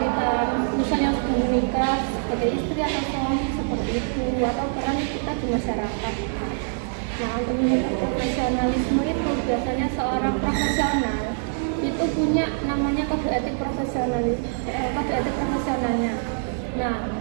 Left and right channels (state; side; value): silent; left; digital silence